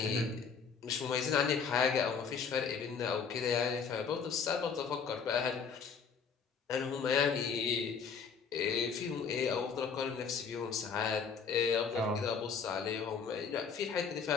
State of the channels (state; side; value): quieter; right; 6.1 dB